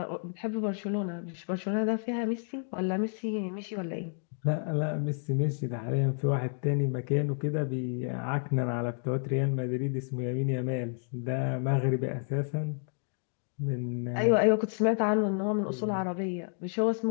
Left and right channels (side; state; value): right; silent; 57 dB below the other